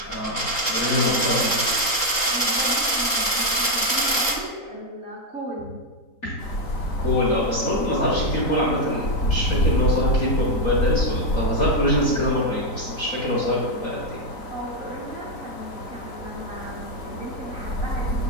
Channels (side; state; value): right; late; 3.7 ms